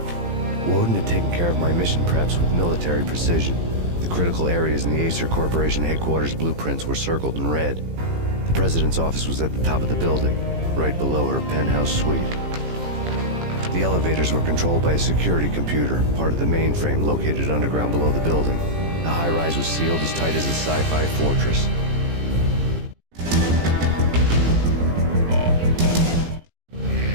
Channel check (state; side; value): late; left; 18 ms